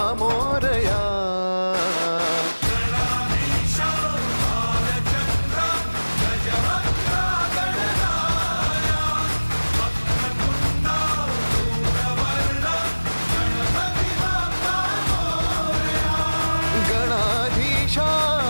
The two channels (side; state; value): both; inverted; correlation -1.00